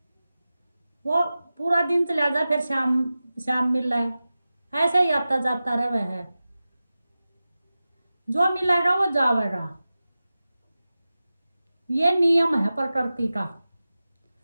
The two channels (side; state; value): both; inverted; correlation -0.95